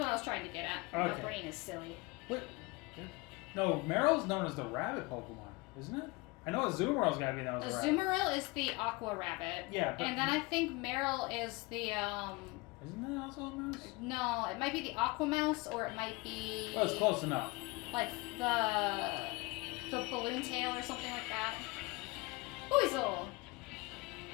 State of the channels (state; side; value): quieter; right; 24.7 dB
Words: I was trying to get at. Okay. My brain is silly. What? No, Meryl's known as the rabbit Pokemon, isn't it? I know Azumarill's gotta be known as a rabbit. Azumarill is the Aqua Rabbit. Yeah, but And then I think Meryl is the, isn't that also a mouse? no, it might be the Aqua Mouse, or it might be... Oh, it's close enough. like the balloon tail or something like that. Weasel!